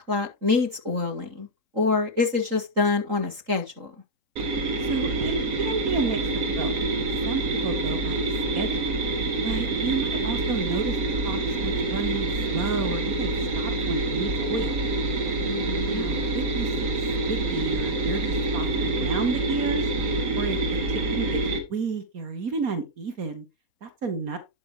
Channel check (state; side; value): late; left; 3.8 ms